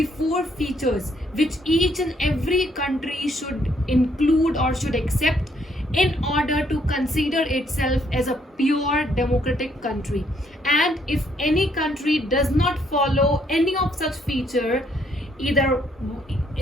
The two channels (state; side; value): normal; both; correlation 0.69